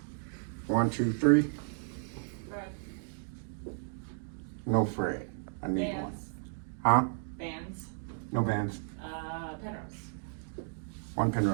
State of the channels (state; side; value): silent; left; digital silence